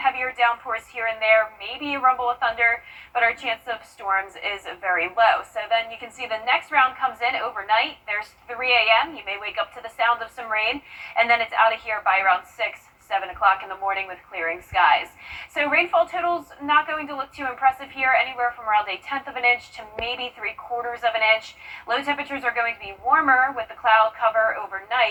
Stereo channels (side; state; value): both; identical; correlation 1.00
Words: downpours here and there, maybe a rumble of thunder, but our chance of storms is very low. So then you can see the next round comes in overnight. There's 3 a.m. You may wake up to the sound of some rain, and then it's out of here by around 6, 7 o'clock in the morning with clearing skies. So rainfall totals not going to look too impressive here, anywhere from around 1/10 of an inch to maybe 3/4 of an inch. Low temperatures are going to be warmer with the cloud cover